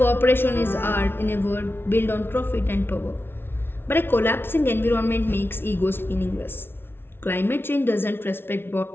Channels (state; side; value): late; right; 0.11 ms